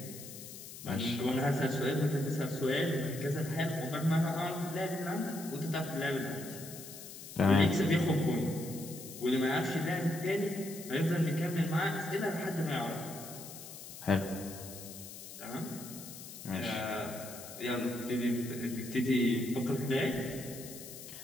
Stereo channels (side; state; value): left; noise; hiss, 13 dB below the sound